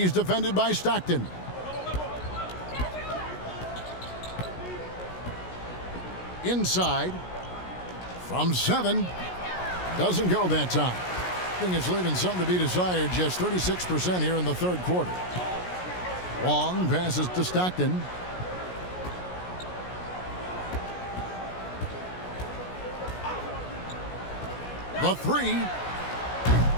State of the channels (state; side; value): late; right; 16 ms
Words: defended by Stockton. Inside. From 7. Doesn't go that time. I think it's leaving something to be desired. Just 36% here in the third quarter. Wong passes to Stockton. The 3.